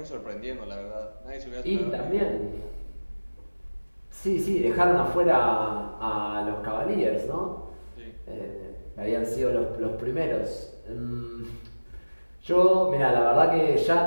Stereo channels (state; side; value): inverted; both; correlation -1.00